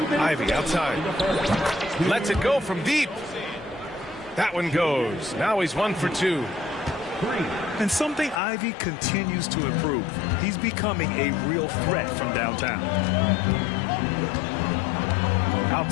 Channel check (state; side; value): drops out; right; at 8.4 s